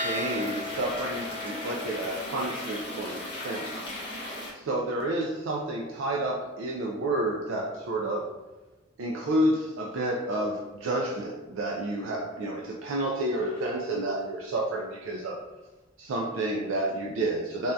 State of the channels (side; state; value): both; normal; correlation 0.22